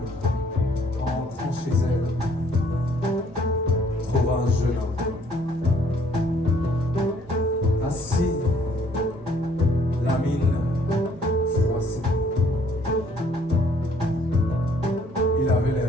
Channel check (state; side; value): normal; both; correlation 0.62